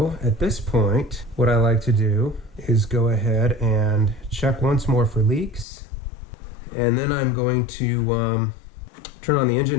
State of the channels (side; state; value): right; drops out; at 5.7 s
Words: at this point, what I like to do is go ahead and check once more for leaks. And then I'm going to turn on the